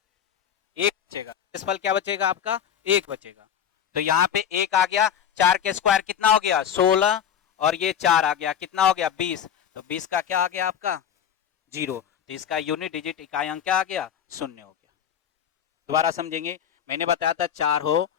एक बचेगा, इस पल क्या बचेगा आपका, एक बचेगा। तो यहाँ पे एक आ गया, 4 के स्क्वायर कितना हो गया, 16, और ये 4 आ गया, कितना हो गया, 20, तो 20 का क्या आ गया आपका, 0, तो इसका यूनिट डिजिट इकाई अंक क्या आ गया, 0 हो गया। दोबारा समझेंगे, मैंने बताया था 4 हो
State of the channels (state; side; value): quieter; right; 8.9 dB